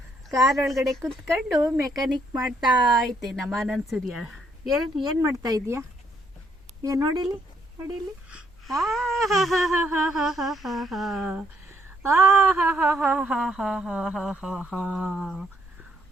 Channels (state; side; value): normal; both; correlation 0.71